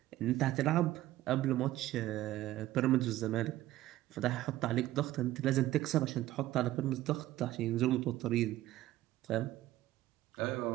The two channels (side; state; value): left; quieter; 15.2 dB